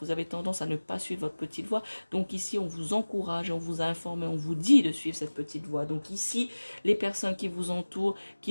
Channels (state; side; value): inverted; both; correlation -1.00